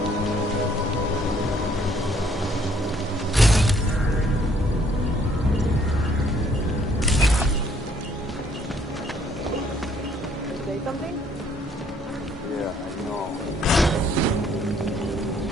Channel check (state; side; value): normal; both; correlation 0.64